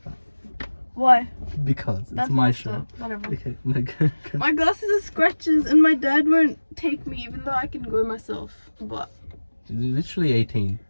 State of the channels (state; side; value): inverted; both; correlation -1.00